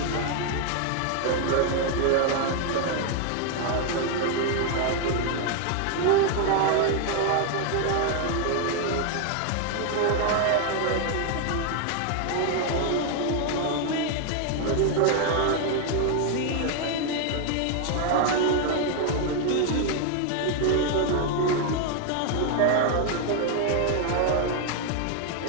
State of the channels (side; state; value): both; different; correlation 0.00